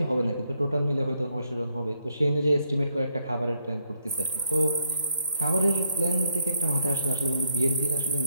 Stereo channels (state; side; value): inverted; both; correlation -0.73